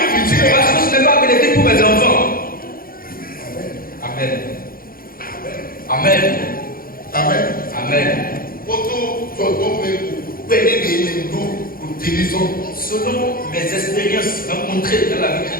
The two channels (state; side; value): late; right; 0.42 ms